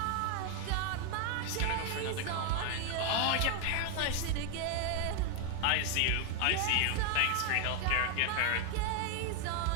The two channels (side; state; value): both; different; correlation 0.01